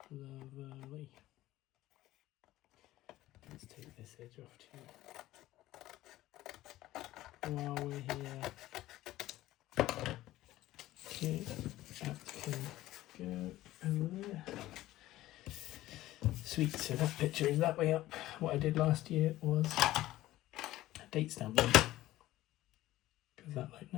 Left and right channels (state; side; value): quieter; right; 15.8 dB